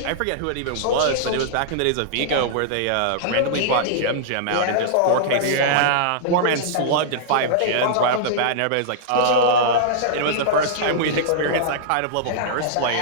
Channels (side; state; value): both; different; correlation -0.02